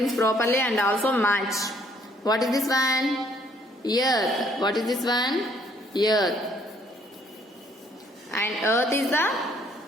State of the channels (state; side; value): normal; both; correlation 0.64